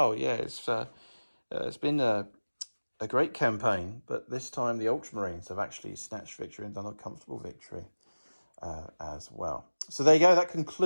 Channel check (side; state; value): both; inverted; correlation -1.00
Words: Yeah, it's been a great campaign, but this time the Ultramarines have actually snatched victory and done a comfortable victory as well. So there you go. That